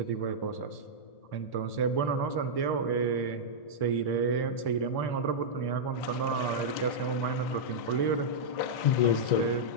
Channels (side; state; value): right; late; 1.1 ms